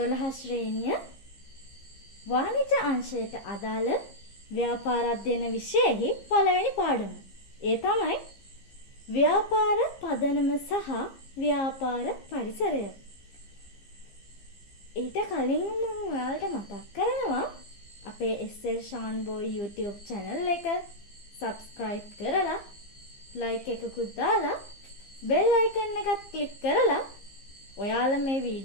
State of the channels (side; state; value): right; late; 15 ms